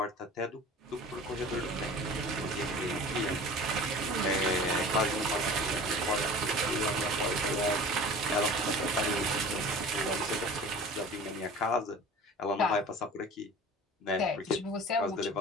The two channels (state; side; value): normal; both; correlation 0.40